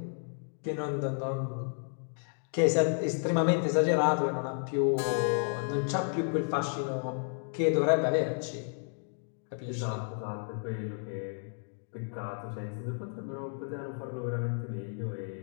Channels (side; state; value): right; silent; 56 dB below the other